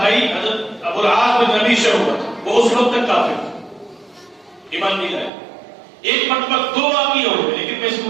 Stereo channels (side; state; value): left; drops out; at 5.3 s